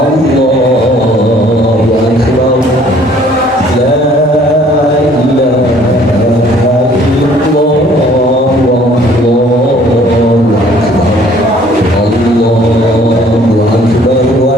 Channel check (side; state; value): both; normal; correlation 0.57